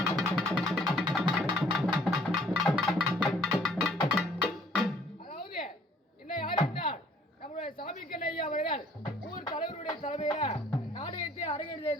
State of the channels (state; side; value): normal; both; correlation 0.59